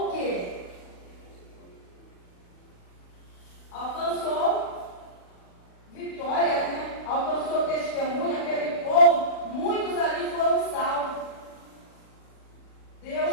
o quê? Alcançou vitória, né? Alcançou testemunho, aquele povo, muitos ali foram salvos.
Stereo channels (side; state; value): right; late; 40 ms